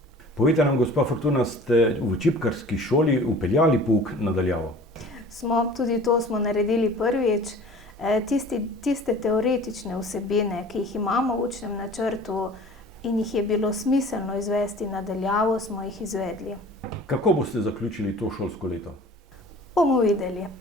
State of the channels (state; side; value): normal; both; correlation 0.45